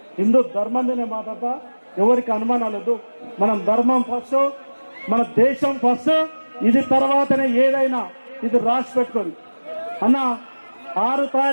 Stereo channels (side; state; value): both; inverted; correlation -1.00